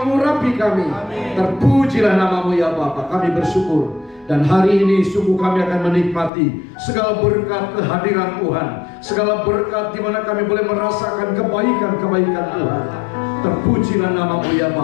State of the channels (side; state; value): right; drops out; at 6.3 s